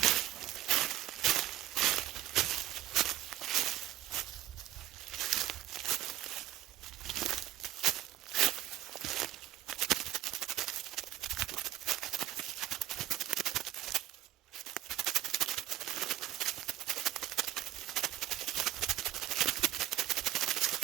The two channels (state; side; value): quieter; left; 13.5 dB